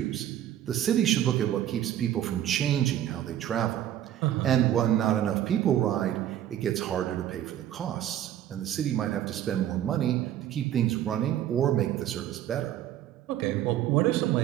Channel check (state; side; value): quieter; left; 11.6 dB